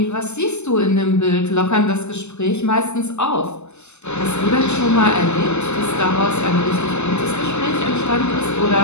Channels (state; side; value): late; right; 0.82 ms